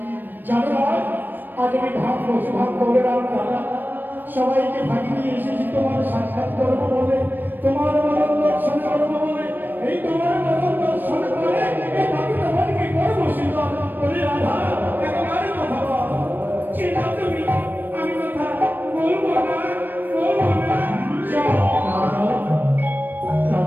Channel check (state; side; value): late; left; 0.092 ms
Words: জানো না আজ আমি ভাব বসে ভাব করে রাধা সবাইকে ভাগি নিয়ে এসেছি তোমার সাক্ষাৎ করবো বলে, তোমার মরণ দর্শন করবো বলে। এই তোমার মরণ দর্শন করে এই বাকি তোমাকে করবো শীতল বলে রাধা একেবারে কথা বল। চিন্তা তুমি, আমি কথা বলবো না, বলবো না। যাও রাধা,